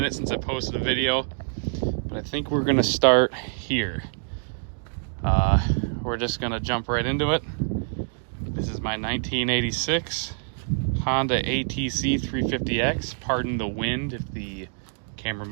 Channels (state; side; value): silent; left; digital silence